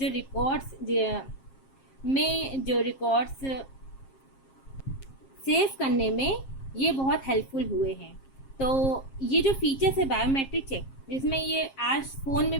रिकॉर्ड्स में जो रिकॉर्ड्स सेव करने में ये बहुत हेल्पफुल हुए हैं। तो ये जो फीचर्स है बायोमेट्रिक चेक, जिसमें ये आज फ़ोन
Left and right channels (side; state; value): right; late; 7.5 ms